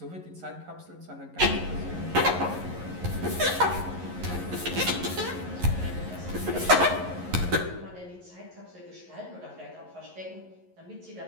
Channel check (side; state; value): left; late; 11 ms